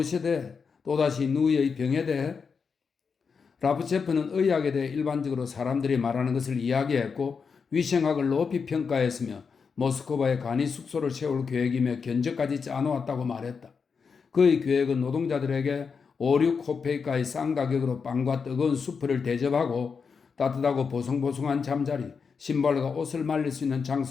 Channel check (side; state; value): right; quieter; 5.6 dB